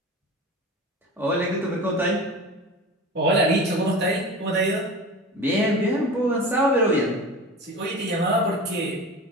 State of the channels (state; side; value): normal; both; correlation 0.33